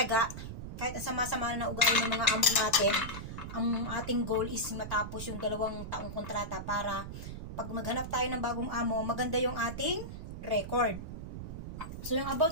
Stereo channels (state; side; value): noise; right; rumble, 8 dB below the sound